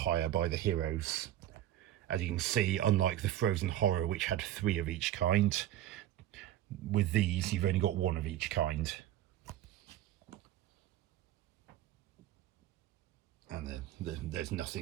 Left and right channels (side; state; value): left; quieter; 12.9 dB